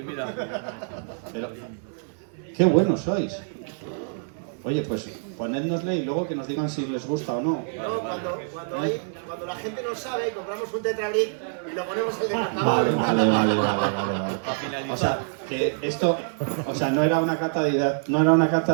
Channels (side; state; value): left; silent; 61 dB below the other